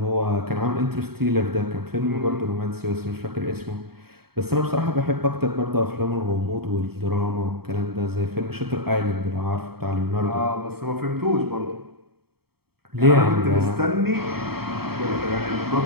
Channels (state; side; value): late; left; 0.96 ms